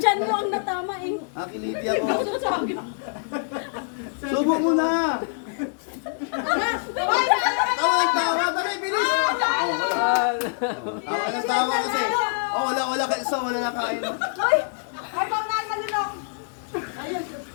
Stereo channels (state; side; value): silent; right; digital silence